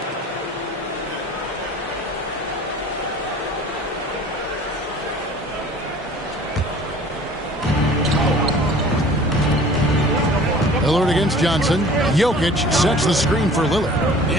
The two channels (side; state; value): both; normal; correlation 0.47